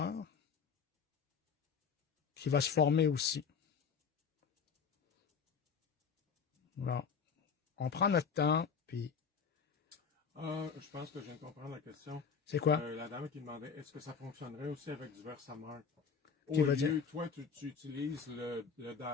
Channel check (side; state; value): right; quieter; 6.2 dB